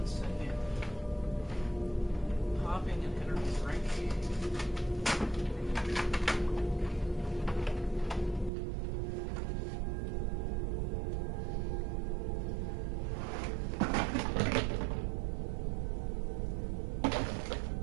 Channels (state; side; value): drops out; left; at 8.5 s